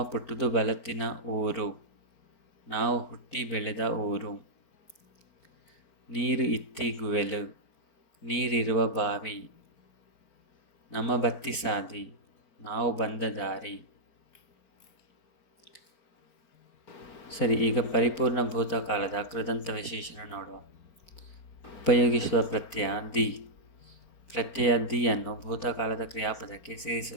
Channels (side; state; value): right; late; 4.4 ms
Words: ಪುಟ್ಟುದು ಬಲತ್ತಿನ ಊರು ನಾವು ಹುಟ್ಟಿ ಬೆಳೆದ ಊರು. ನೀರು ಇತ್ತಿ ಗುವೆಲು ನೀರಿರುವ ಬಾವಿ. ನಮ್ಮ ಬತ್ತಿ ಸಾದಿ ನಾವು ಬಂದ ದಾರಿ. ಸರಿ, ಈಗ ಪರಿಪೂರ್ಣ ಭೂತಕಾಲದ ಕೃದಂತ ವಿಶೇಷಣ ನೋಡುವ. ಉಪಯೋಗಿಸುವ ಪ್ರತ್ಯಯ ದಿ. ಪ್ರತ್ಯಯ ದಿಯನ್ನು ಭೂತಕಾಲದ ಕ್ರಿಯಾಪದಕ್ಕೆ